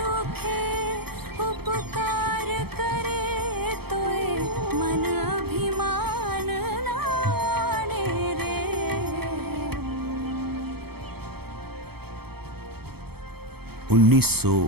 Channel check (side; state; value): left; late; 0.96 ms